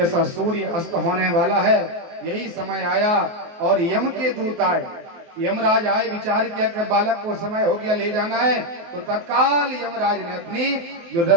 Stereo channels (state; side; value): late; left; 23 ms